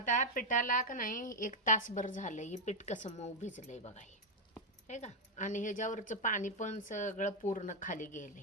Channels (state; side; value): normal; both; correlation 0.01